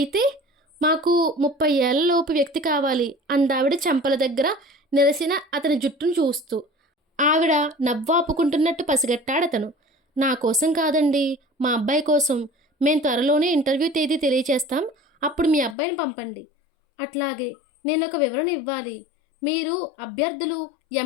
మాకు 30 ఏళ్లలోపు వ్యక్తి కావాలి అందావిడ చెంపల దగ్గర నిరసిన అతని జుట్టును చూస్తూ. ఆవిడ నవ్వాపుకుంటున్నట్టు పసిగట్టాడతను. నా కోసం కాదండి, మా అబ్బాయి కోసం. మేము త్వరలోనే ఇంటర్వ్యూ తేదీ తెలియచేస్తాం, అప్పుడు మీ అబ్బాయిని పంపండి. అట్లాగే, నేను ఒక వివరణ ఇవ్వాలి. మీరు అభ్యర్థులు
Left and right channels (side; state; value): right; drops out; at 15.8 s